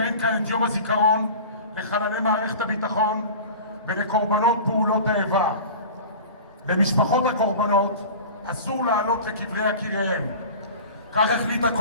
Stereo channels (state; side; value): inverted; both; correlation -0.37